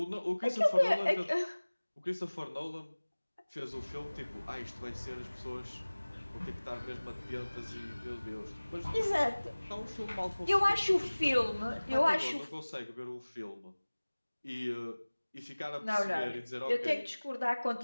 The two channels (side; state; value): both; inverted; correlation -1.00